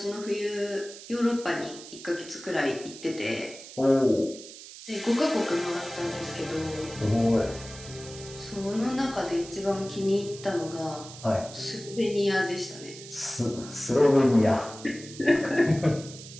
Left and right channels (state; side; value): noise; right; hiss, 15 dB below the sound